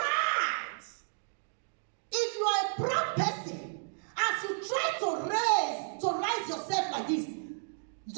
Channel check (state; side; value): silent; left; digital silence